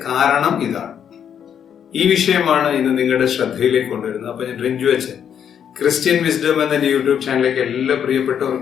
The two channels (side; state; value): right; quieter; 8.5 dB